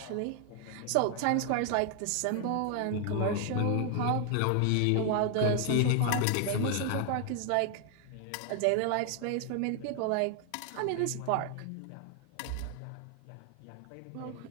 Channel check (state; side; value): different; both; correlation 0.00